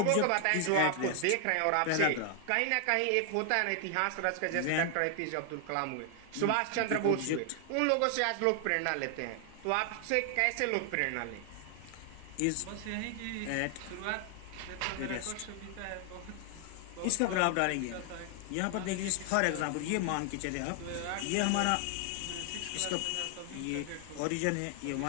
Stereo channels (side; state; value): both; different; correlation 0.00